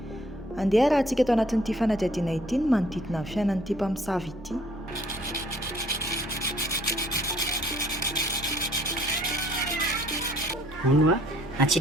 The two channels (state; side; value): normal; both; correlation 0.60